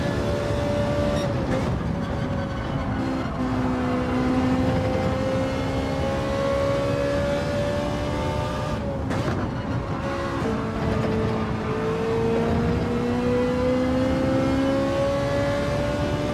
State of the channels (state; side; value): identical; both; correlation 1.00